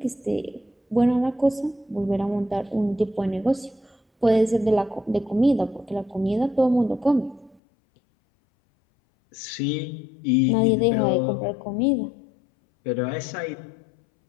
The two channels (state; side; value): drops out; right; at 7.6 s